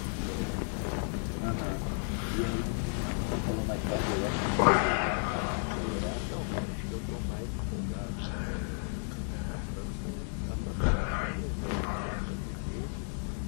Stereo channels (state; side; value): silent; right; 56 dB below the other